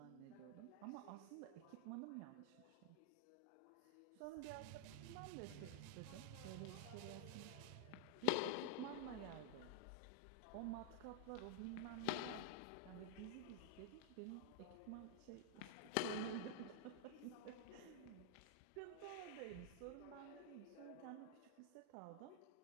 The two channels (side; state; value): both; different; correlation 0.00